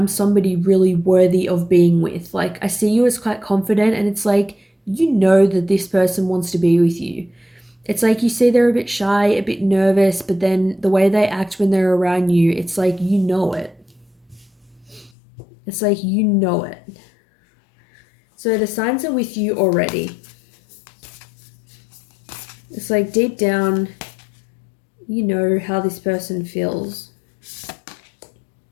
somebody really worthy of being with. Like I see you as quite confident, and it's like you know that this person wants to be with you. It's like you see they're a bit shy, a bit nervous, but then the way they act when they're around you, it's like you know it. It's like you know it. So the signs are with you already. It's like deep down, you know how this person feels.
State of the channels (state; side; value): drops out; right; at 15.1 s